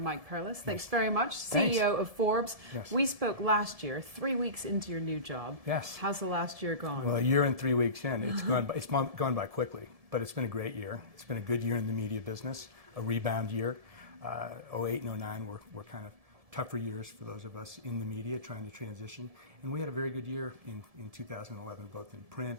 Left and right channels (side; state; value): left; late; 1.7 ms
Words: Perlis. Thanks very much, CEO of Forbes. Yes. We spoke last year, 3 weeks into your new job. Yes. How's the last year gone? Well, a year and 3 weeks in, it's gone by quickly, but it's been a great year. It's been a good year in the media business, a rebound year. 08 and 09 were kind of tougher years for those of us in the media trying to transition, and we had a very good year in 2011, both in